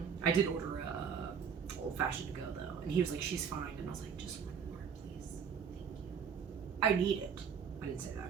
did order old fashioned to go though, and he was like, she's fine, and I was like, just one more I need it. I didn't say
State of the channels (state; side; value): quieter; left; 7.0 dB